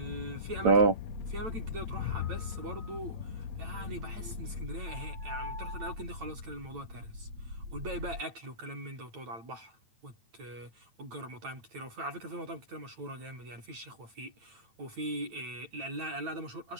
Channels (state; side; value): late; left; 8.9 ms